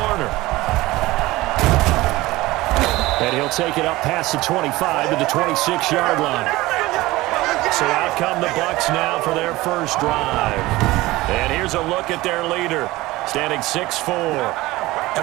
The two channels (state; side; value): quieter; left; 19.1 dB